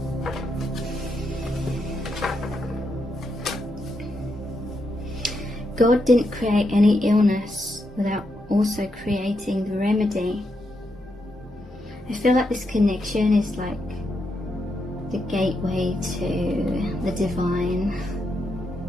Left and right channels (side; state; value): both; normal; correlation 0.82